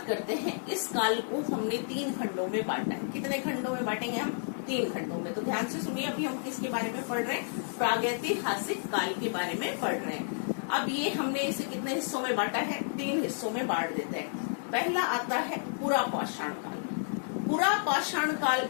करते हैं, इस काल को हमने 3 खंडों में बांटा है। कितने खंडों में बांटेंगे हम? 3 खंडों में। तो ध्यान से सुनिए, अभी हम किसके बारे में पढ़ रहे हैं? प्रागैतिहासिक काल के बारे में पढ़ रहे हैं। अब ये हमने इसे कितने हिस्सों में बांटा है? 3 हिस्सों में बांट देते हैं। पहला आता है पुरा पाषाण काल। पुरा पाषाण काल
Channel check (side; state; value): right; silent; digital silence